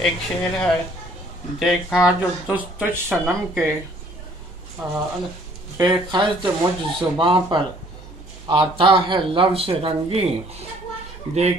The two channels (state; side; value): normal; both; correlation 0.58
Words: شعر ہے دیکھا جو تجھ صنم کے بے خرد مجھ زباں پر آتا ہے لفظ رنگی